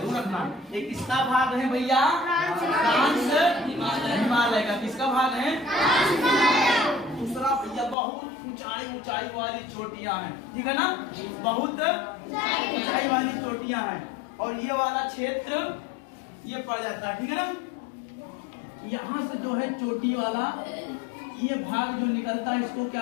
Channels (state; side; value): drops out; right; at 8.0 s